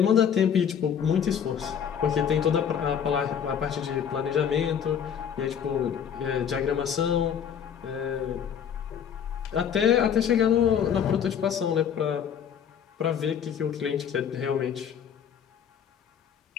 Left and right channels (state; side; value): quieter; right; 8.1 dB